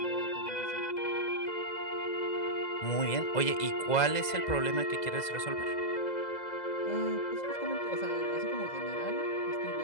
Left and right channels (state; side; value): late; right; 2.0 ms